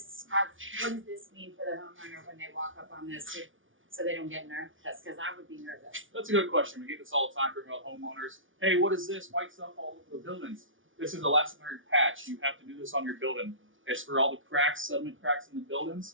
have? What does this mean for the homeowner when they walk up on this, so they don't get nervous? Because I would be nervous. That's a good question. We get this all the time from homeowners. Hey, what is this white stuff all over the buildings? This is elastomeric patch. You have to do this on your building. It's for all the cracks, sediment cracks in the buildings.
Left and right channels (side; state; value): left; late; 0.57 ms